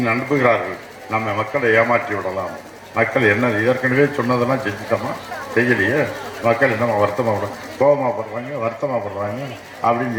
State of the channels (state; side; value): identical; both; correlation 1.00